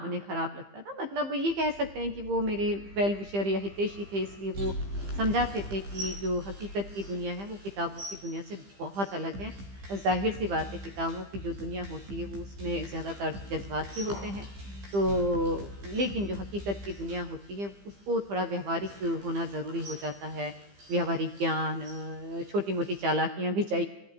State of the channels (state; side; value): late; left; 15 ms